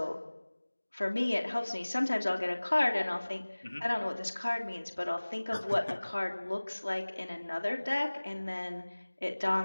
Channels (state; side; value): inverted; both; correlation -1.00